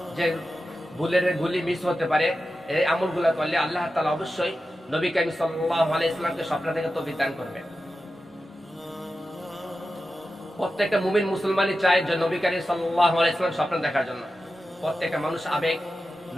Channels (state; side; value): normal; both; correlation 0.92